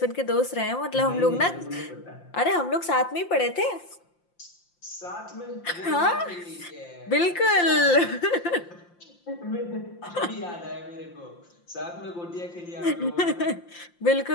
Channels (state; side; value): late; right; 5.7 ms